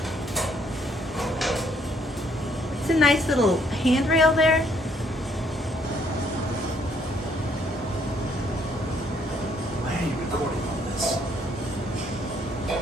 It's a nice little handrail there. Why are you recording all this?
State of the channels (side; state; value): both; normal; correlation 0.67